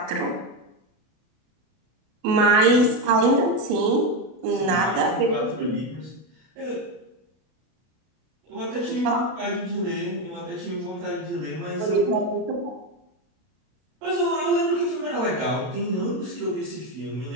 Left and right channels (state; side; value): late; left; 32 ms